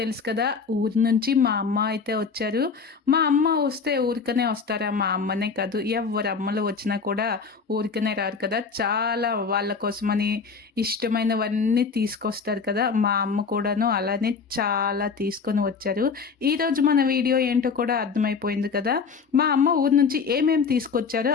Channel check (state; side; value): quieter; right; 5.3 dB